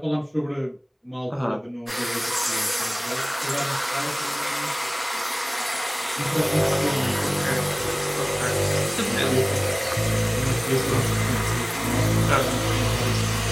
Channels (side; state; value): both; identical; correlation 1.00